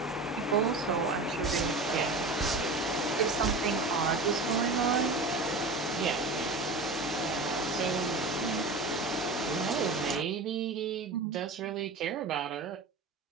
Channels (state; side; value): quieter; left; 3.2 dB